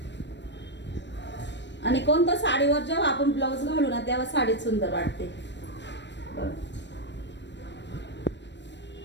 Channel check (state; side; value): late; right; 0.52 ms